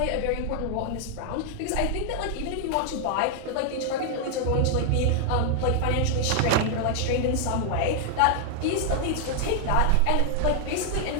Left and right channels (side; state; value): both; different; correlation -0.01